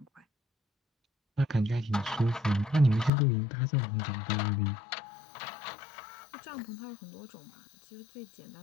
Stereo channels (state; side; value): drops out; right; at 3.1 s